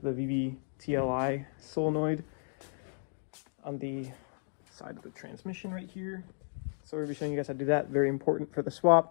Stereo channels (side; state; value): right; silent; digital silence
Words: the VVTLI solenoid on the side of the transmission right here. So we'll be showing you guys how to do that. Very important for the